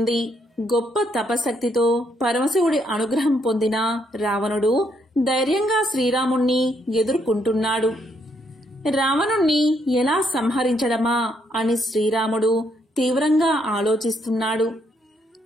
గొప్ప తపశక్తితో పరమశివుడి అనుగ్రహం పొందిన రావణుడు ధైర్యంగా శ్రీరాముణ్ణి ఎదుర్కొంటున్నాడు. రావణుణ్ణి ఎలా సంహరించడమా అని శ్రీరాముడు తీవ్రంగా ఆలోచిస్తున్నాడు.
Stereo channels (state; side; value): normal; both; correlation 0.73